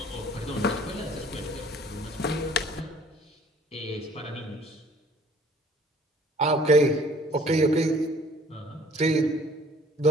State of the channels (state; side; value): normal; both; correlation 0.54